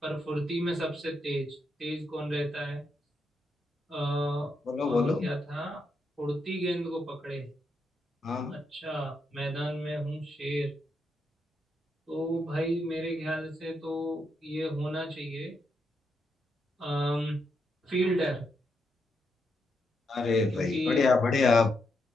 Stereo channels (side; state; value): both; normal; correlation 0.81